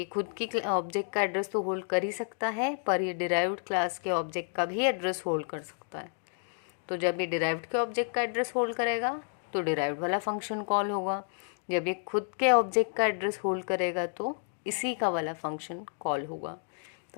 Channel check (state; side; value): silent; right; 57 dB below the other